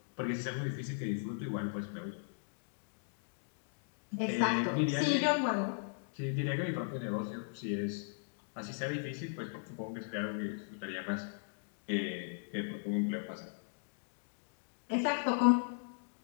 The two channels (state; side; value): silent; right; digital silence